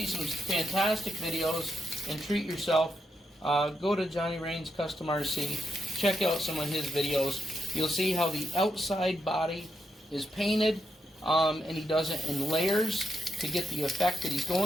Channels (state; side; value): normal; both; correlation 0.83